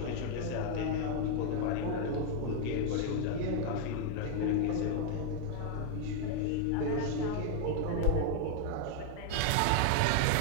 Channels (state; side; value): different; both; correlation 0.00